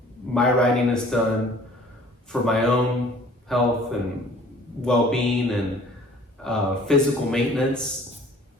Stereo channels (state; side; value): normal; both; correlation 0.52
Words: My riding is done for my own health and well-being and physical maintenance,